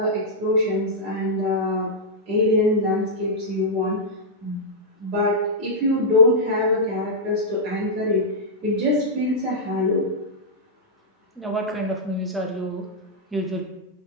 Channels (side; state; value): both; normal; correlation -0.08